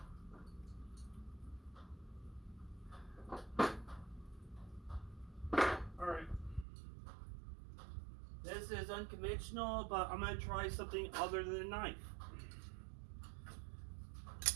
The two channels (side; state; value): left; drops out; at 6.7 s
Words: Alright. This is unconventional, but I'm going to try something other than a knife.